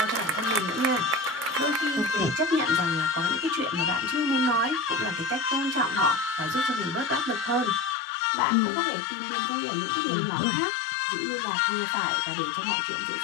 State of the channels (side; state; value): right; drops out; at 8.0 s